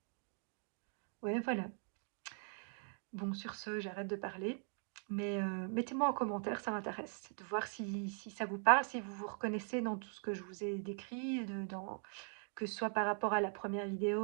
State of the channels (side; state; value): left; silent; 51 dB below the other